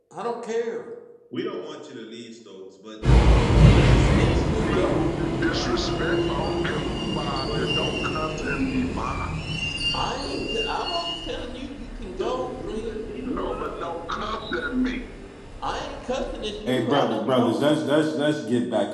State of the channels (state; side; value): identical; both; correlation 1.00